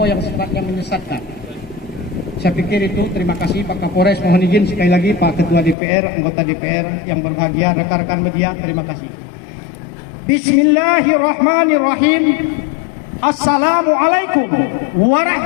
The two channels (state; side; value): drops out; right; at 5.8 s